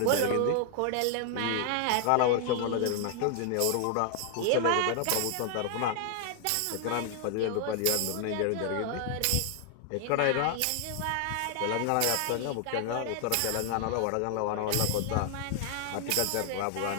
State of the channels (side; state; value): both; different; correlation 0.00